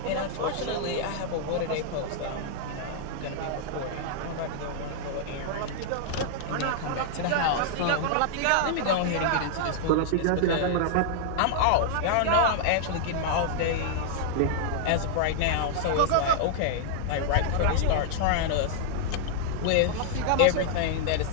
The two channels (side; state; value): both; different; correlation -0.01